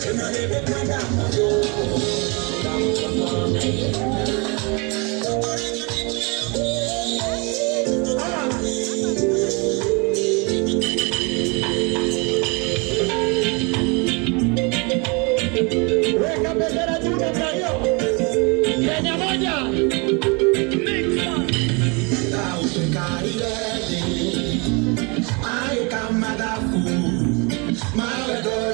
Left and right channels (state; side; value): quieter; left; 30.6 dB